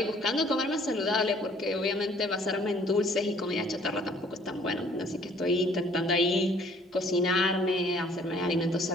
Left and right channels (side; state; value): both; normal; correlation 0.58